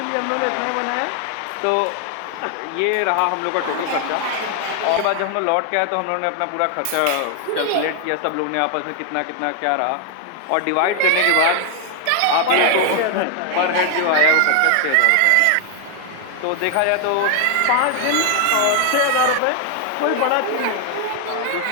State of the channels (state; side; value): different; both; correlation 0.00